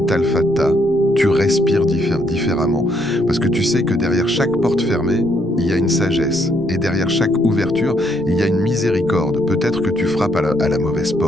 Al-Fattah, tu respires différemment. Parce que tu sais que derrière chaque porte fermée, il y a une sagesse. Et derrière chaque ouverture, il y a une miséricorde. Peut-être que tu frappes à la mauvaise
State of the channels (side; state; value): left; noise; rumble, 23 dB below the sound